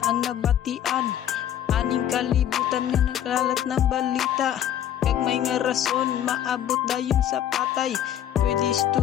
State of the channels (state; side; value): quieter; right; 10.6 dB